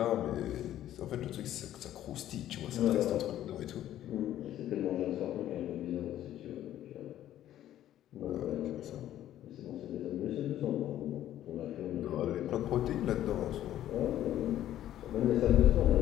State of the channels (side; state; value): right; quieter; 12.4 dB